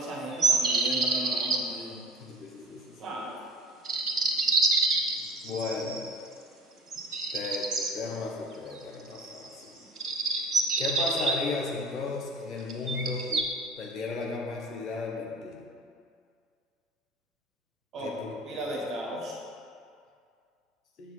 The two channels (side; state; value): both; normal; correlation 0.42